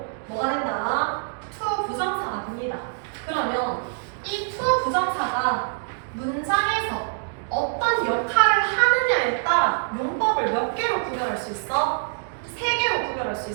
뭐가 된다? to 부정사가 됩니다. 그러면 이 to 부정사가 문장에서 어떤 역할을 하느냐에 따라 용법을 몇 개로 구별할 수 있어? 3개로 구별할 수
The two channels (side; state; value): left; silent; digital silence